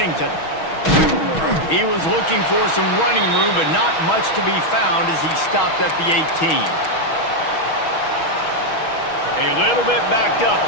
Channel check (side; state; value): right; late; 6.2 ms